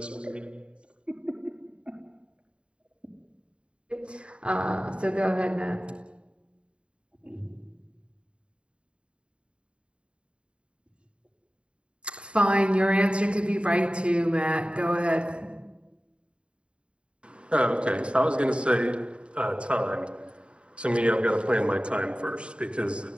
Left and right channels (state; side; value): late; left; 0.056 ms